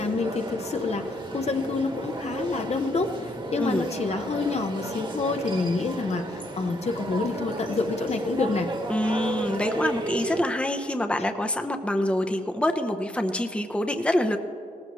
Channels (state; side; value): normal; both; correlation 0.76